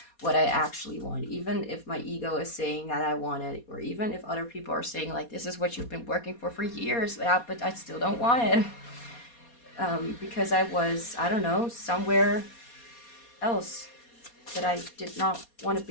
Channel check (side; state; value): right; late; 4.2 ms